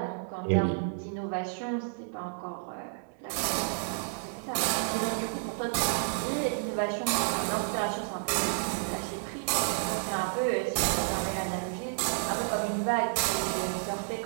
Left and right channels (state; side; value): silent; left; digital silence